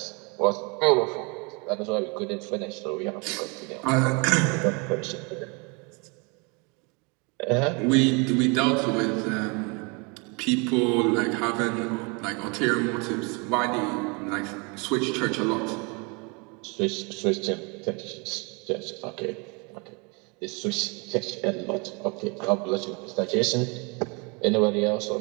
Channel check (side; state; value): left; quieter; 31.3 dB